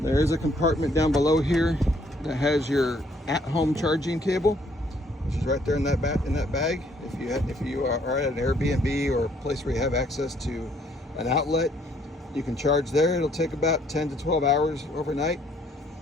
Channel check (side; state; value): both; normal; correlation 0.65